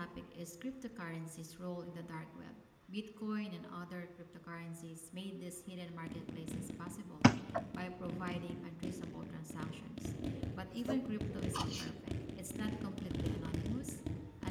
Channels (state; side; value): identical; both; correlation 1.00